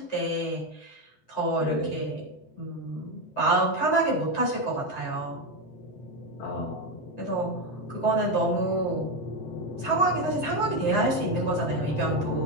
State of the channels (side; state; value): right; late; 7.8 ms